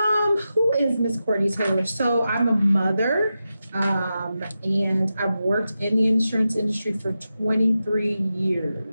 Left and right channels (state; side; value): inverted; both; correlation -0.91